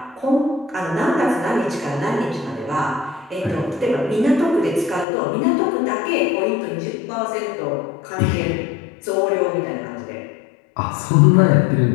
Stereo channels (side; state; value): right; drops out; at 5.1 s